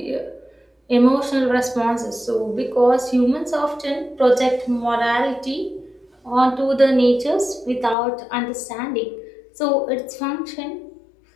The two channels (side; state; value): right; drops out; at 8.0 s